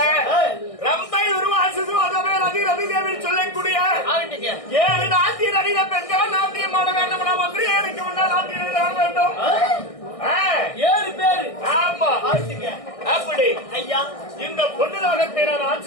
ரம்பை உருவாசு அதவே ரதி ரதி தேவி சொல்லக்கூடிய 7 நாட்டிய நடிக பெண்கள் நாட்டியம் ஆட வேண்டும். மந்திரி எனக்கு முன்னால் நாட்டியம் ஆட வேண்டும். 7 பேர். ஆமா. அப்படி ஐயா இந்த பொண்ணு லோகத்தை நான்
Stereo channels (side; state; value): right; late; 1.6 ms